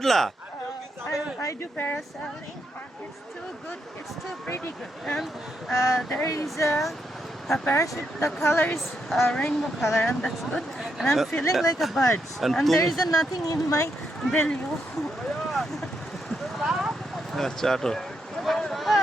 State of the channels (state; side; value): normal; both; correlation 0.81